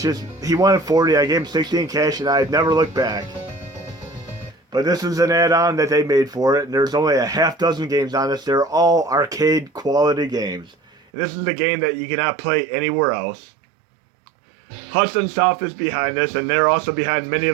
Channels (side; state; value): left; drops out; at 11.0 s